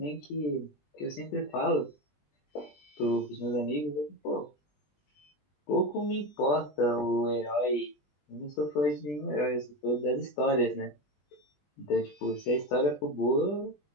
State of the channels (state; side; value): late; right; 20 ms